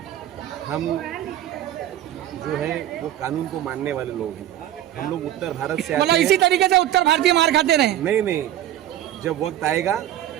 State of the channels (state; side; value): quieter; left; 12.4 dB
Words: हम जो है वो कानून को मानने वाले लोग हैं। हम लोग उत्तर भारत से मतलब इसी तरीके से उत्तर भारतीय मार खाते रहे? नहीं, जब वक्त आएगा